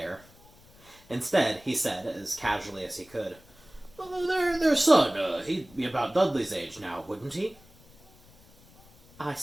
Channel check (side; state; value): left; noise; rumble, 26 dB below the sound